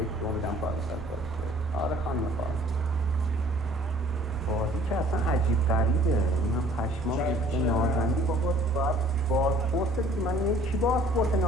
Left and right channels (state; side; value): normal; both; correlation 0.55